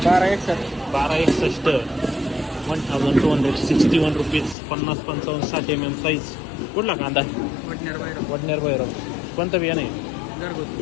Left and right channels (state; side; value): drops out; right; at 4.5 s